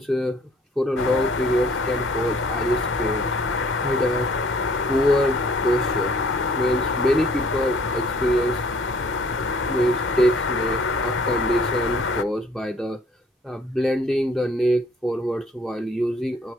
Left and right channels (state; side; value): normal; both; correlation 0.58